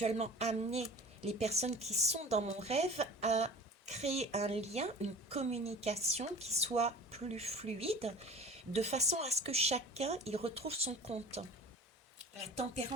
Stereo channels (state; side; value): normal; both; correlation 0.41